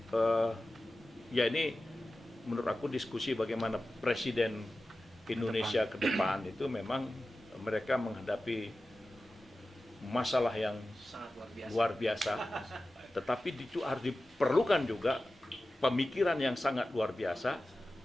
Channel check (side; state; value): both; normal; correlation 0.95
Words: ya ini menurut aku diskusi bagaimana presiden Indonesia ke depan itu memang mereka menghadapi masalah yang Sangat luar biasa. luar biasa, tetapi itu harus diperlukan juga pemikiran yang sangat luar biasa